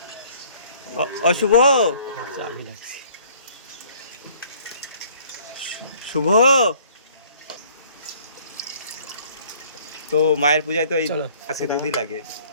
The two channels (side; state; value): both; inverted; correlation -0.56